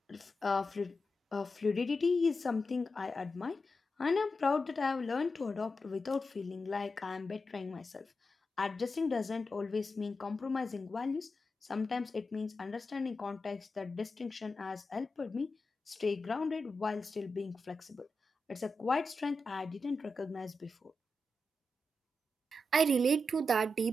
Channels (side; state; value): both; normal; correlation 0.89